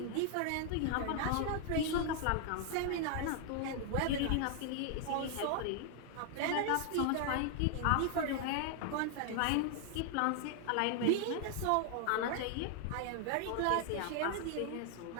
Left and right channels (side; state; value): both; different; correlation 0.00